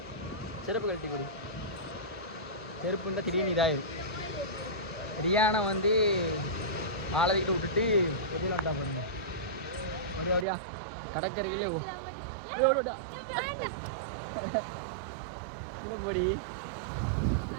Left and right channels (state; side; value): drops out; left; at 10.5 s